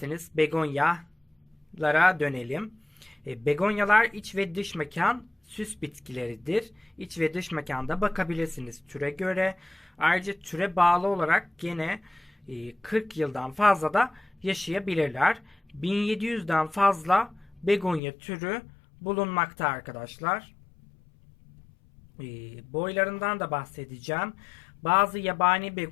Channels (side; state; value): right; drops out; at 18.0 s